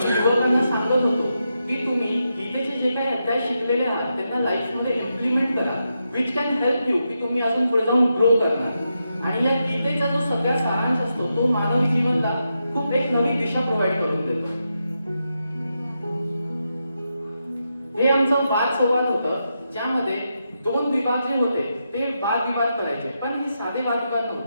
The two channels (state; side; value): inverted; both; correlation -0.85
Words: युवकांना सांगत होतो की तुम्ही गीतेचे जे काही अध्याय शिकलेले आहात त्यांना लाईफमध्ये इम्प्लिमेंट करा, विच कॅन हेल्प यू की तुम्ही अजून पुढे जाऊन ग्रो करणार. आणि या गीतेचा जो सगळा सारांश असतो तो मानवी जीवनाला खूप एक नवी दिशा प्रोव्हाइड करून देतो. हे आमचं वाद संवाद होतं, ज्यामध्ये दोन विभाग जे होते ते वादविवाद करायचे, पण हे साधे वादविवाद